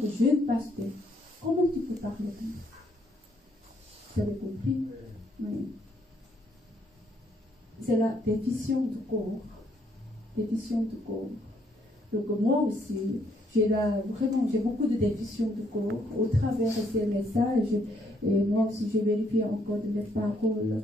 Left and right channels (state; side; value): normal; both; correlation 0.71